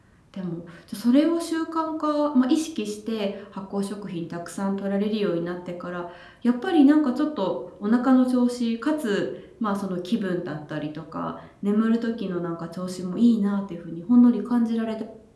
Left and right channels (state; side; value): identical; both; correlation 1.00